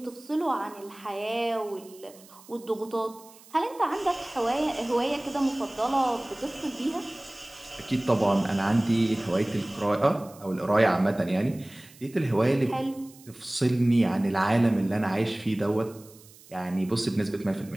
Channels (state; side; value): noise; right; hiss, 23 dB below the sound